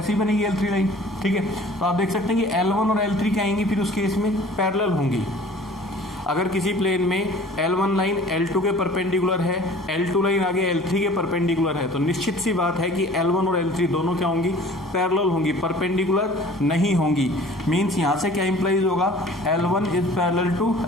बनेगी L3 लाइन। ठीक है, तो आप देख सकते हैं कि L1 और L3 क्या आएंगी फिर उस केस में? पैरेलल होंगी। अगर किसी प्लेन में L1 लाइन L2 के परपेंडिकुलर है, L2 लाइन आगे L3 के परपेंडिकुलर है, तो निश्चित सी बात है कि L1 और L3 दोनों क्या होंगी? पैरेलल होंगी, परपेंडिकुलर नहीं होंगी। मीन्स यहाँ से क्या इंप्लाइज होगा? L1 is parallel to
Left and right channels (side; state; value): both; normal; correlation 0.48